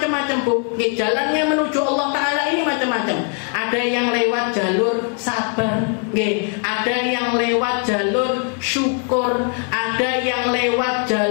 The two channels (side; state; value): right; quieter; 38.8 dB